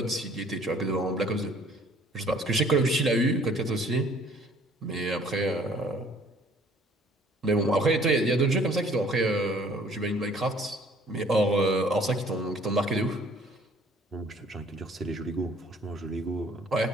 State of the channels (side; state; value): both; normal; correlation 0.56